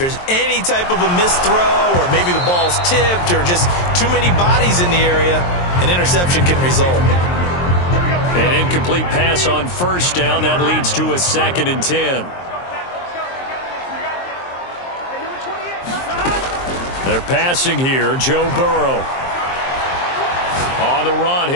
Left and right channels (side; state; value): right; late; 23 ms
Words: any type of a missed throw, or maybe the ball's tipped, or just too many bodies in the area, an interception can result. An incomplete pass on first down. That leads to a 2nd and 10. They're passing here. Joe Burrow. On the run,